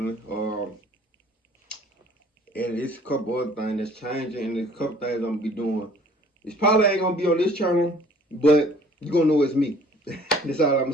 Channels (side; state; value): both; normal; correlation 0.54